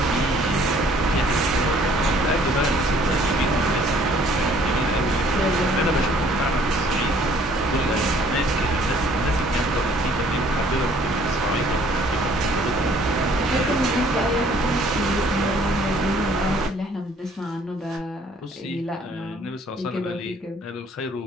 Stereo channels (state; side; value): normal; both; correlation 0.58